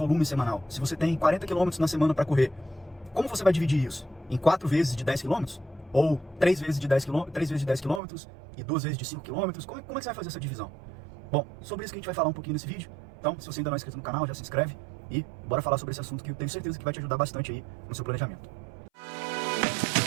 semanal? Se você tem 40 quilômetros na semana para correr, como você vai dividir isso? Em 4 vezes de 10 quilômetros? Ou 3 vezes de 10 quilômetros, 3 vezes de 10 quilômetros e 2 vezes de 5 quilômetros? Como é que você vai fazer essa divisão? Bom, sobre isso que a gente vai falar um pouquinho nesse vídeo. Então, se você ainda não é inscrito no canal, já se inscreve e bora falar sobre esse assunto que eu tenho certeza que vai te ajudar bastante aí no seu planejamento.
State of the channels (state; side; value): drops out; left; at 8.0 s